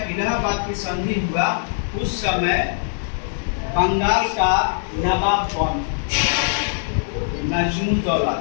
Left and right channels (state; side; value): silent; right; digital silence